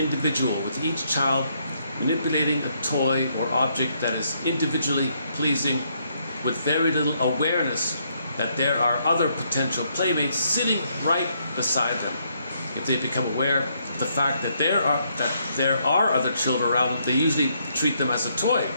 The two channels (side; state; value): both; inverted; correlation -0.73